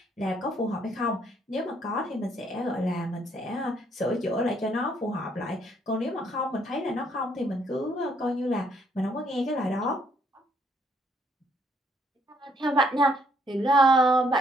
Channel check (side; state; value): both; normal; correlation 0.69